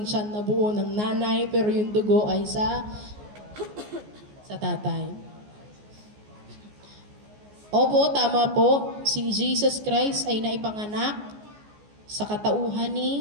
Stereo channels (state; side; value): late; left; 14 ms